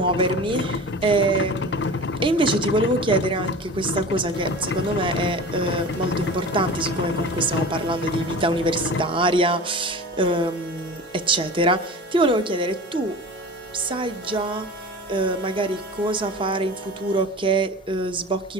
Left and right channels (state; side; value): normal; both; correlation 0.35